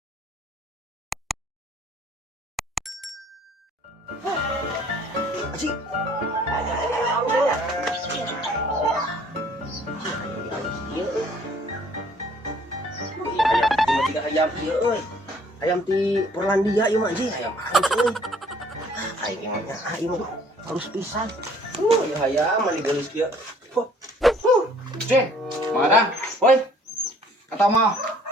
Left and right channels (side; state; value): both; normal; correlation 0.58